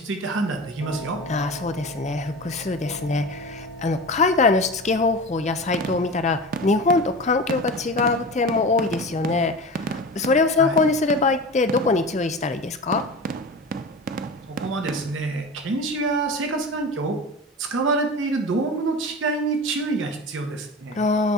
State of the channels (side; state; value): both; normal; correlation 0.31